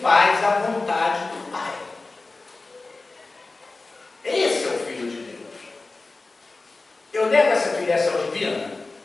faz a vontade do Pai. Esse é o Filho de Deus. Eu nego essa filiação divina?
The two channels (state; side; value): quieter; right; 3.5 dB